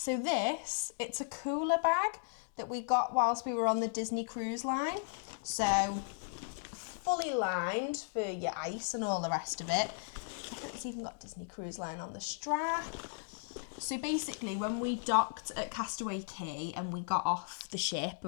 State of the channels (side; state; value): right; silent; digital silence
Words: this, it's a cooler bag that we got whilst we were on the Disney cruise line. So fully lined for your ice and all the rest of it. I think it's even got Disney Cruise Line on the strap. So basically when we docked at Castaway Cay and we got off the ship